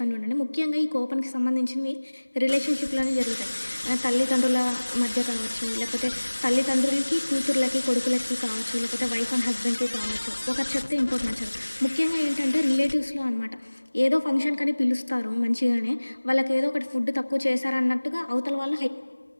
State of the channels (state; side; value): inverted; both; correlation -1.00